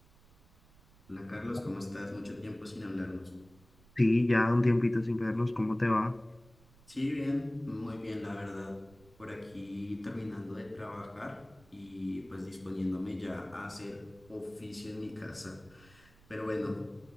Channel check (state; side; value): noise; right; rumble, 26 dB below the sound